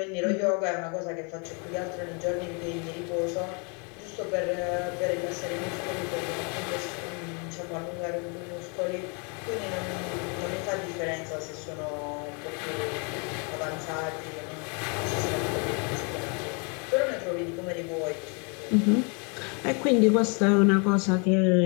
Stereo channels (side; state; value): right; quieter; 34.9 dB